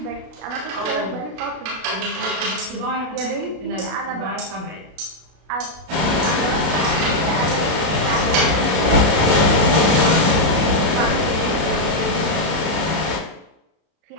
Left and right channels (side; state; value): left; late; 32 ms